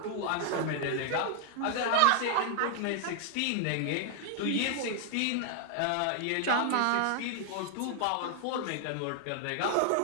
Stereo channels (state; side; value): different; both; correlation 0.00